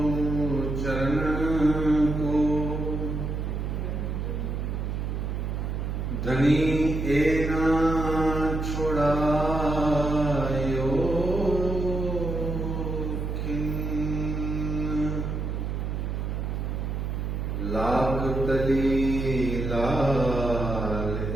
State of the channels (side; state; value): right; noise; hum, 2 dB below the sound